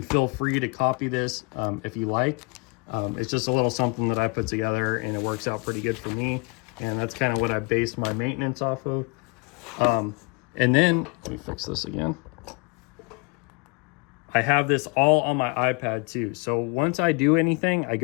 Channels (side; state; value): right; quieter; 29.7 dB